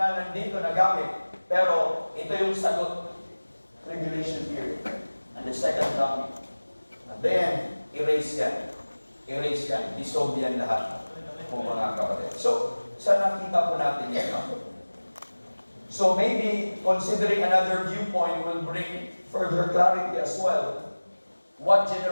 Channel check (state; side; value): inverted; both; correlation -1.00